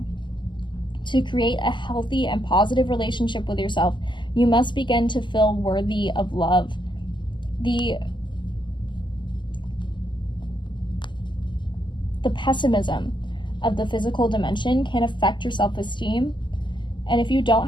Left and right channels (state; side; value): late; right; 0.22 ms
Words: To create a healthy and positive relationship with yourself, you must begin to feel worthy of love. The pessimism of the physical dimension can affect your self-esteem. And if you don't